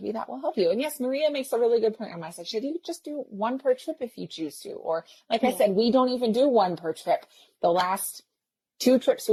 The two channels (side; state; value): both; identical; correlation 1.00